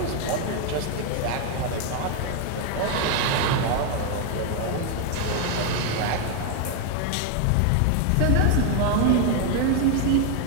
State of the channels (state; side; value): different; both; correlation 0.01